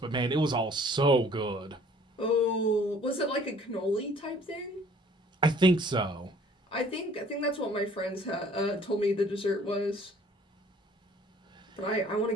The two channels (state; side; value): normal; both; correlation 0.55